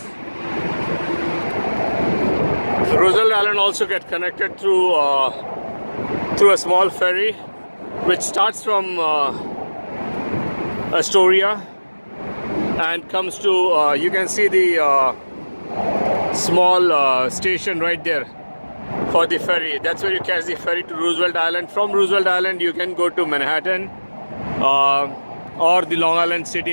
Roosevelt Island also get connected through a small ferry, which starts from Astoria and comes to. You can see the small station right there for the ferry. That's where you catch the ferry to Roosevelt Island. From Roosevelt Island, you can go to Manhattan or the Long Island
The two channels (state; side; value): inverted; both; correlation -1.00